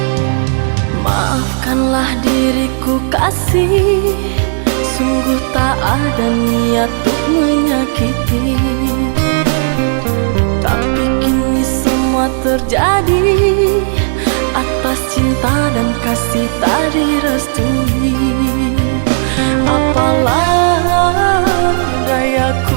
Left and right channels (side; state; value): left; silent; digital silence